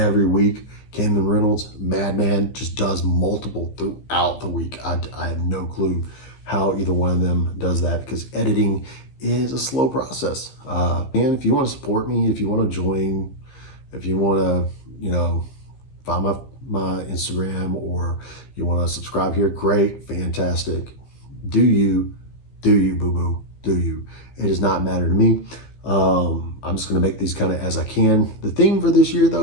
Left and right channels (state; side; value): late; right; 15 ms